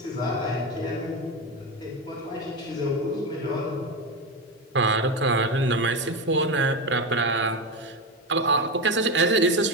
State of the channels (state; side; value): normal; both; correlation 0.16